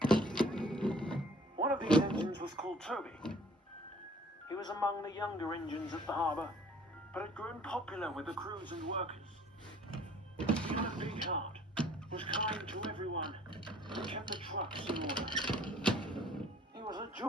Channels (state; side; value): normal; both; correlation 0.55